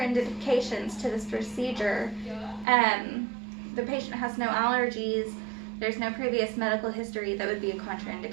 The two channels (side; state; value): left; drops out; at 2.7 s